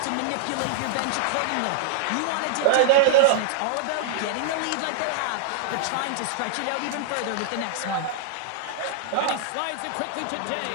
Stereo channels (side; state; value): both; different; correlation -0.01